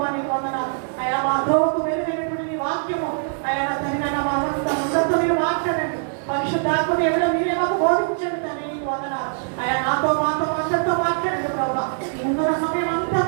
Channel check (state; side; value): silent; left; digital silence